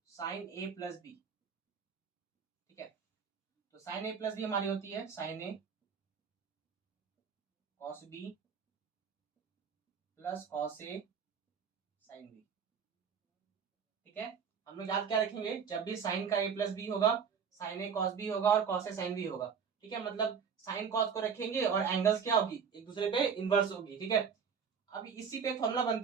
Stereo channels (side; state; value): left; quieter; 6.6 dB